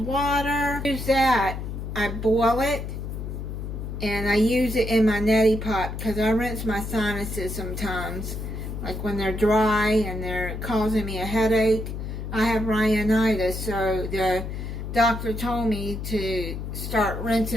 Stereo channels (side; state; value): left; noise; hum, 6 dB below the sound